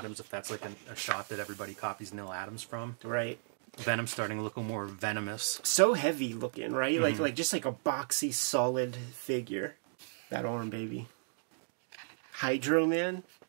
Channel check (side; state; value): left; silent; digital silence